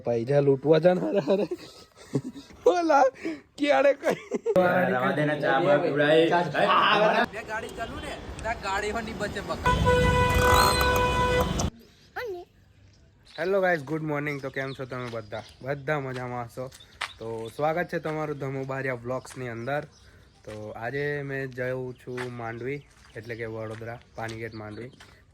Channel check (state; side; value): identical; both; correlation 1.00